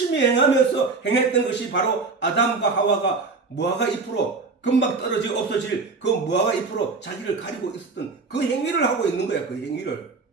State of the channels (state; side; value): quieter; left; 4.2 dB